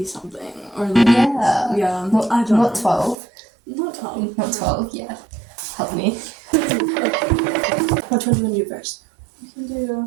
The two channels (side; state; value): left; drops out; at 3.2 s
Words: something or yeah, yeah, not, I don't not know. 12, Not 12. not 12. Yeah, help me. Which one do you want to do first? We can